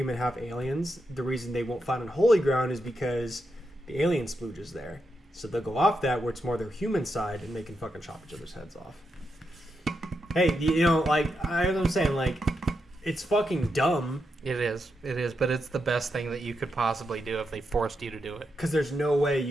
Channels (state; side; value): normal; both; correlation 0.84